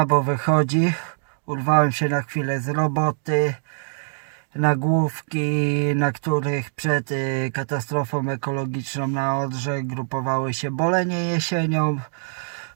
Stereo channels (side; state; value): left; silent; digital silence